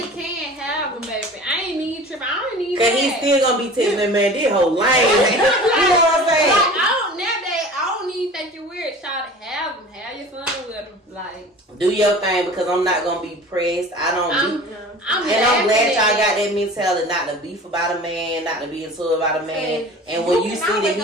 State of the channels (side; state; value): both; normal; correlation 0.40